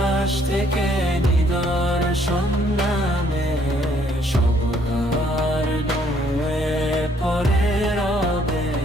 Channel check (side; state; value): both; normal; correlation 0.66